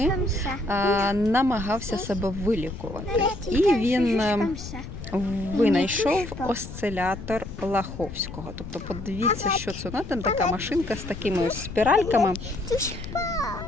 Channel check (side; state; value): left; noise; rumble, 11 dB below the sound